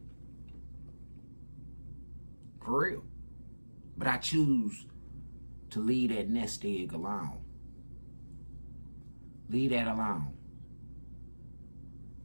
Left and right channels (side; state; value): both; inverted; correlation -1.00